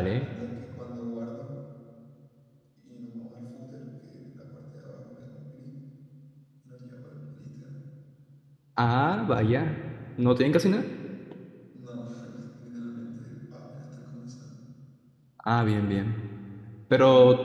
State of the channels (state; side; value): identical; both; correlation 1.00